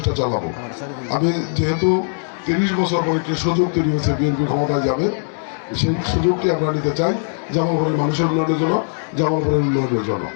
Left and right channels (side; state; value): right; silent; digital silence